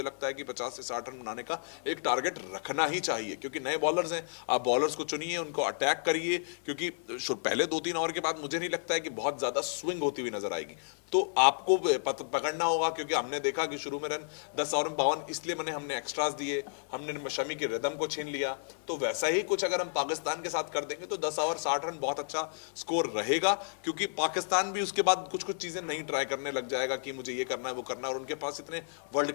लगता है कि 50 से 60 रन बनाने का एक टारगेट रखना ही चाहिए, क्योंकि नए बॉलर्स हैं, आप बॉलर्स को चुनिए, उनको अटैक करिए, क्योंकि पहले 2-3 ओवर के बाद मुझे नहीं लगता है कि बहुत ज्यादा स्विंग होती हुई नजर आएगी। तो आपको पकड़ना होगा, क्योंकि हमने देखा कि शुरू में रन 10 ओवर में 52 इसलिए मैंने हमने एक्स्ट्रास दिए, हमने शमी की रिदम को छीन लिया। तो वैसा ही कुछ अगर हम पाकिस्तान के साथ कर देंगे तो 10 ओवर 60 रन बहुत अच्छा स्कोर रहेगा, क्योंकि पाकिस्तान भी उसके बाद कुछ कुछ चीजें नहीं ट्राई करने लग जाएगा कि मुझे ये करना है वो करना है, और उनके पास इतने वर्ल्ड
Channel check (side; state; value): right; silent; 57 dB below the other